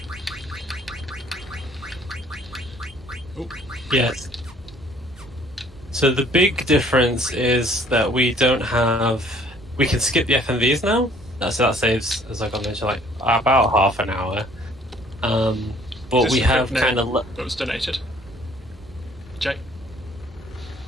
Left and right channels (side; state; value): both; normal; correlation 0.58